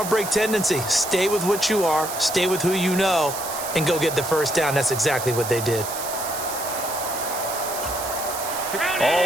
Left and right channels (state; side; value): noise; right; hiss, 7 dB below the sound